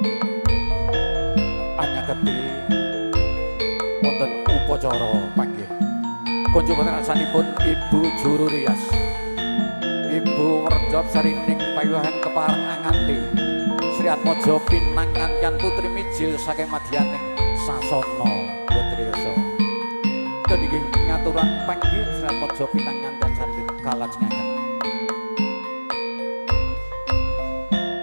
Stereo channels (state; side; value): inverted; both; correlation -1.00